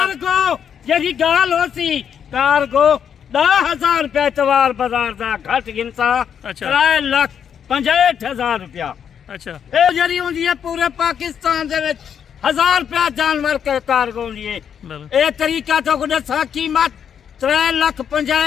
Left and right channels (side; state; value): right; quieter; 8.1 dB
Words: यदि गाल होती कार्गो 10,000 रुपया एतवार बाजार का घट गिनता 3,65,000 रुपया। अच्छा ये जरी होंदी है पूरे पाकिस्तान दे विच 1,000 रुपया जानवर के कार्गो लिए ये तरीका तो को दसा कीमत